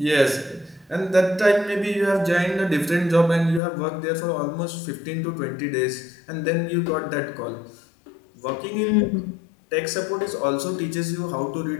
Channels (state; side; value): drops out; right; at 3.6 s